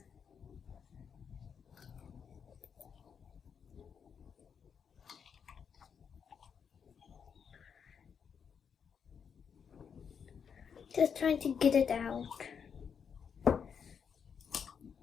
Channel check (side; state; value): right; quieter; 6.9 dB